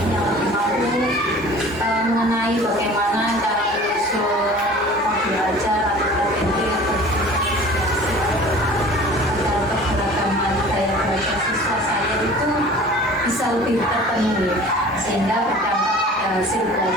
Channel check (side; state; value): both; normal; correlation 0.44